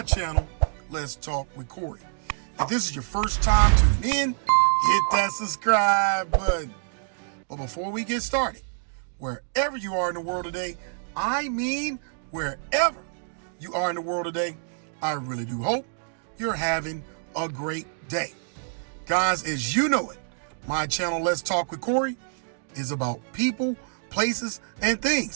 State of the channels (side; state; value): left; silent; digital silence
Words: channel, Let's Talk with Corey. If this is your first time tuning in, hit that subscribe button. But before we get started, wherever you are in the world today, I mean wherever you are in the world today, I really do hope you're having a great day. Guys, as you know it, my channel, Let's Talk with Corey, is about people, places, and